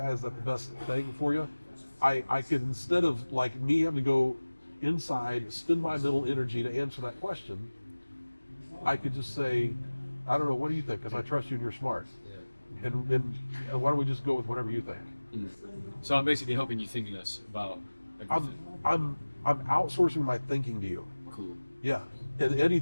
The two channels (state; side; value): inverted; both; correlation -1.00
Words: Is that the best thing for you? I could, instead of like me having to go inside, spend my mental energy to answer that question, I could just say, I don't know, what do you think? Because I trust you and you're smart. Yeah. And why don't we just go with whatever you think? So I'm basically helping you think less about everything. I'm outsourcing my thinking to you. Cool. Yeah. And